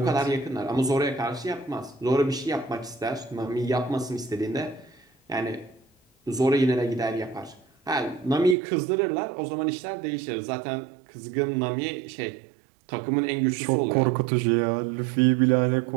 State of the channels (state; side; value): drops out; left; at 8.6 s